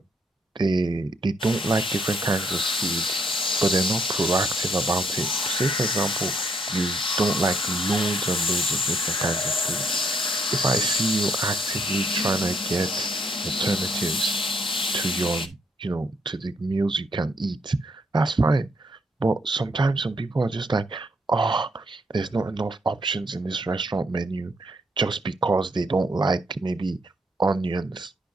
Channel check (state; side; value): normal; both; correlation 0.71